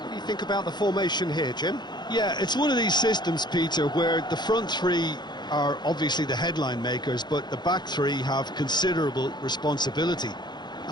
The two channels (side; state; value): right; late; 0.21 ms